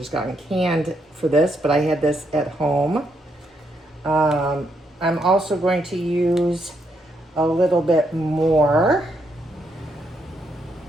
gotten canned for this, but I had this at home. I'm also going to use a little bit more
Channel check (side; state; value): both; normal; correlation 0.77